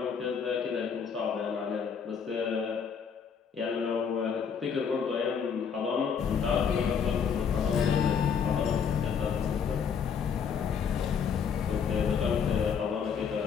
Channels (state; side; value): quieter; right; 6.9 dB